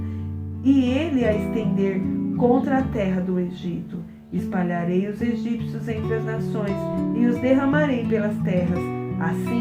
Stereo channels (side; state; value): both; identical; correlation 1.00